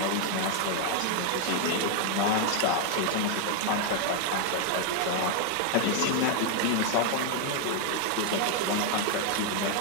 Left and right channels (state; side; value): different; both; correlation 0.00